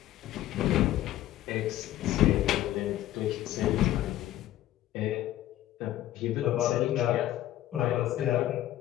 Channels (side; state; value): right; quieter; 13.8 dB